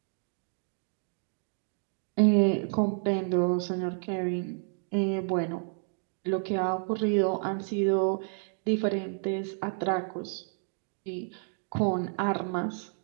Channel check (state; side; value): silent; left; 57 dB below the other